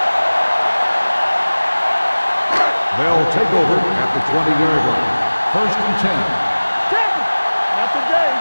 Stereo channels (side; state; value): both; inverted; correlation -1.00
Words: They'll take over at the 20-yard line. First and 10. Not today.